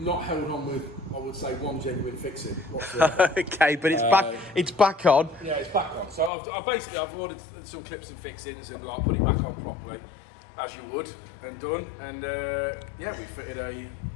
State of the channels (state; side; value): drops out; right; at 6.3 s